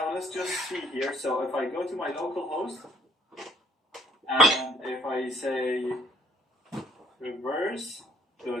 let's just see here. So if I go to my local host, and if I say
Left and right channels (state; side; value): normal; both; correlation 0.60